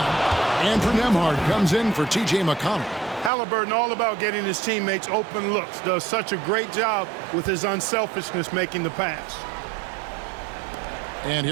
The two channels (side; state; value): left; drops out; at 3.3 s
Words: Andrew Nembhard comes in for T.J. McConnell. Halliburton, all about getting his teammates open looks, does such a great job with his unselfishness making the pass. And